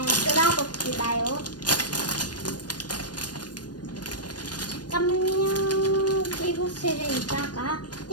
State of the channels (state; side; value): late; right; 0.69 ms